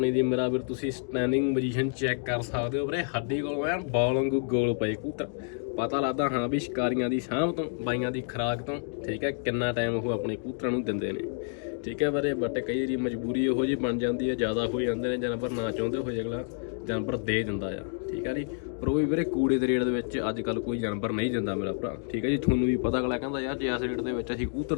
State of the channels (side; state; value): right; silent; 59 dB below the other